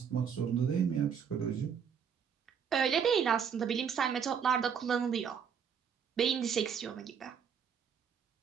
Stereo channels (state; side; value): quieter; left; 7.3 dB